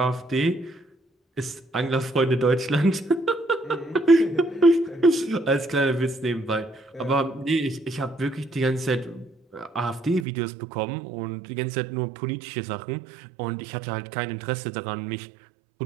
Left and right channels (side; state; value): left; drops out; at 10.2 s